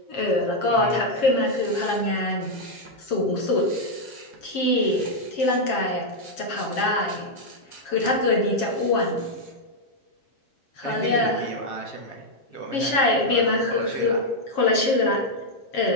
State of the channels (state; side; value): late; right; 7.3 ms